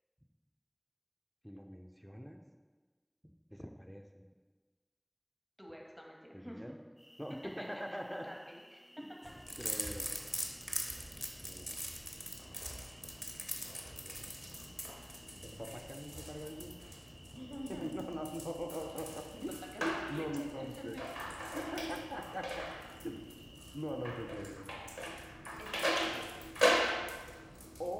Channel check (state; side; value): identical; both; correlation 1.00